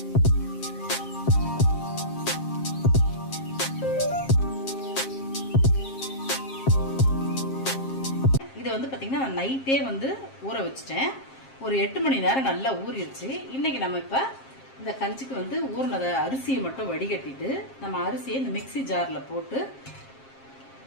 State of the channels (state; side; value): late; right; 7.5 ms